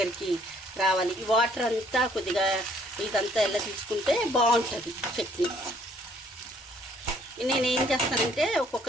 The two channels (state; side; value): normal; both; correlation 0.62